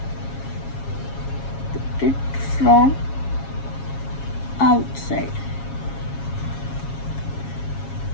put it from outside.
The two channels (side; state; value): right; late; 7.3 ms